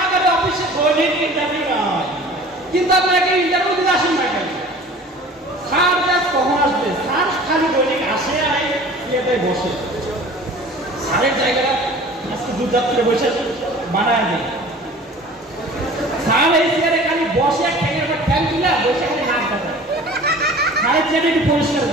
অফিসে দৈনিক ইন্টারভিউ না হয়, কিন্তু আপনাকে ইন্টারভিউ দিতে আসেন না কেন? স্যার কখন আসবে? স্যার খালি দৈনিক আসে আর ইয়েতে বসে। স্যারের জায়গাটা আজকে দুর্যাত্রে বসে বানায় দেয়। স্যার এই চেয়ারে খালি বসে ঠ্যাঙের পর ঠ্যাং তুলে বসে খালি নাক কাটায়। স্যারের চেয়ারে একটু পরিষ্কার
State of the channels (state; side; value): normal; both; correlation 0.44